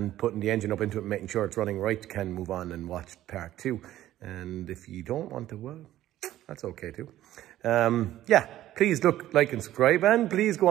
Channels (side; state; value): left; quieter; 13.7 dB